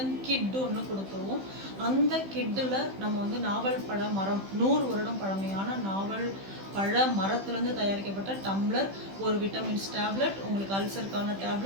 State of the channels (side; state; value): left; late; 15 ms